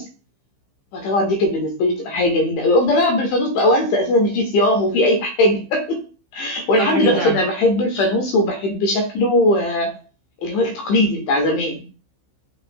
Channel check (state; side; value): late; right; 15 ms